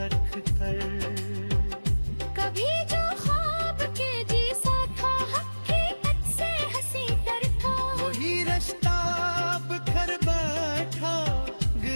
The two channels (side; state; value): both; inverted; correlation -1.00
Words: कर। कभी जो ख्वाब के जैसा था हकीकत से हंसी तर था, वही रास्ता बिखर बैठा